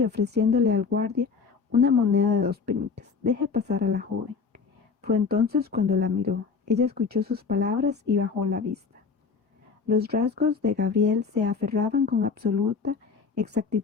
ofreciéndole al guardia una moneda de 2 peniques. Deje pasar a la joven. Fue entonces cuando la miró. Ella escuchó sus palabras y bajó la vista. Los rasgos de Gabriel se aferraban con absoluta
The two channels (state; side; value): quieter; right; 5.3 dB